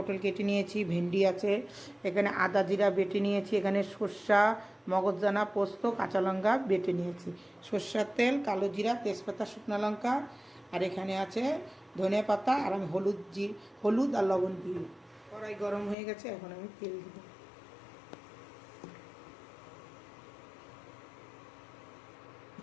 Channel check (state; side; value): drops out; right; at 16.0 s